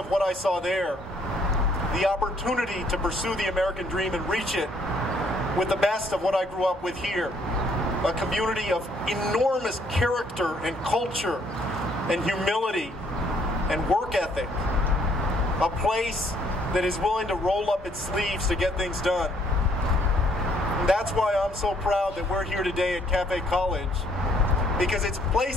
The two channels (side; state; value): both; normal; correlation 0.66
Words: what I saw there, the opportunity to pursue the American dream and reach it, with the best of what I grew up with here. A community of enormous character and culture and humility and work ethic. A place that is willing to roll up its sleeves to get things done. And that's why I'm so proud that we're here today at Cafe College. Because it's